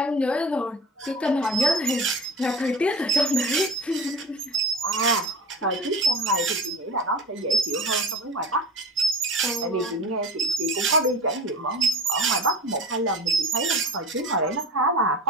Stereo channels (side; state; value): both; normal; correlation 0.33